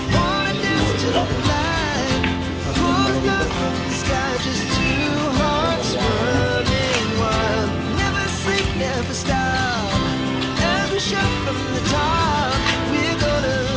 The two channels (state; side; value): identical; both; correlation 1.00